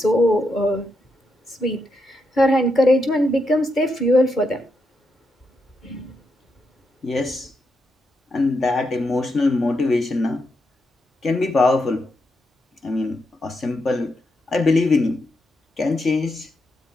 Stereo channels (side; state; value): both; normal; correlation 0.83